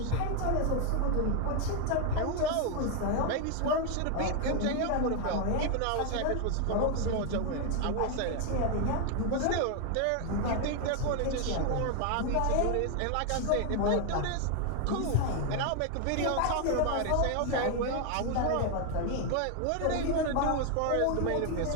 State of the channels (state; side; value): different; both; correlation 0.00